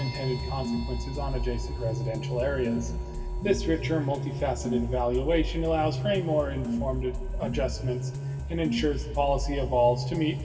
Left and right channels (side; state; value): both; identical; correlation 1.00